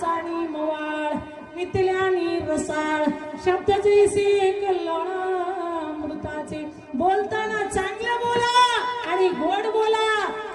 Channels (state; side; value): identical; both; correlation 1.00